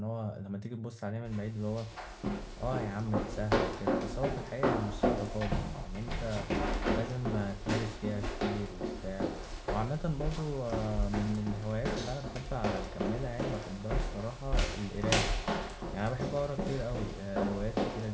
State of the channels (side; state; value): both; identical; correlation 1.00